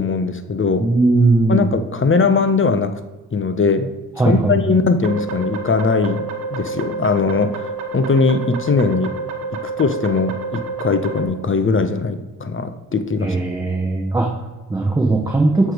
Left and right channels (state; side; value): normal; both; correlation 0.43